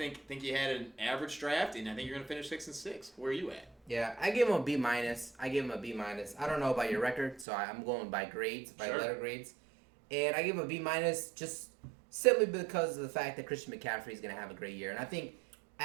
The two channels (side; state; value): left; drops out; at 7.5 s